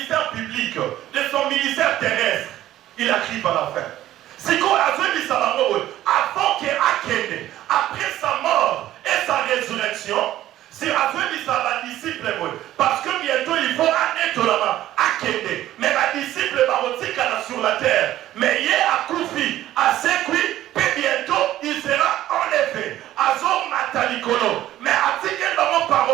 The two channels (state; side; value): quieter; left; 13.7 dB